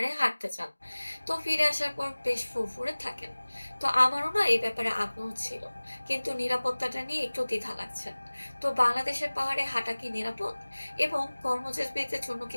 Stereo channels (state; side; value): inverted; both; correlation -1.00